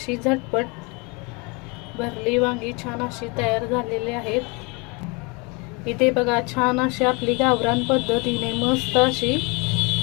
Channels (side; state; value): right; quieter; 29.3 dB